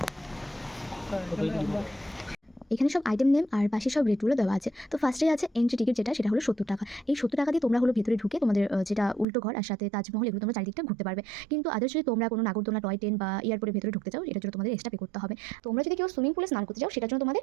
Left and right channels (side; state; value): left; drops out; at 9.2 s